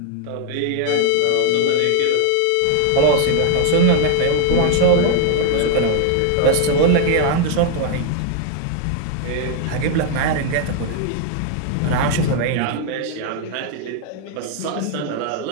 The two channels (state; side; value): different; both; correlation 0.00